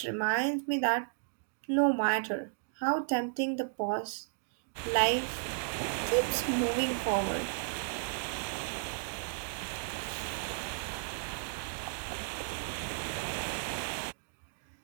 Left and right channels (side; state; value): left; silent; digital silence